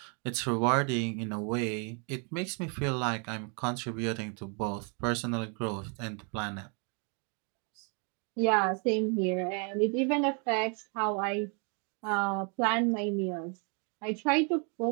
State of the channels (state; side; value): quieter; left; 37.4 dB